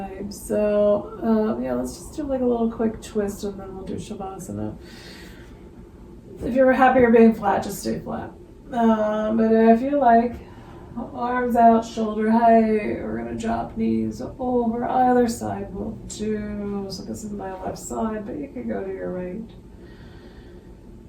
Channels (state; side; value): identical; both; correlation 1.00